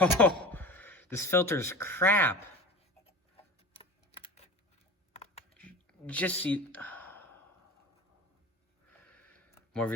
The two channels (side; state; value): both; normal; correlation 0.35